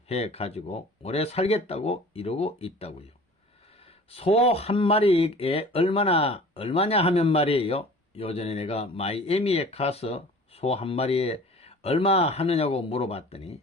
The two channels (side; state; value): both; normal; correlation 0.45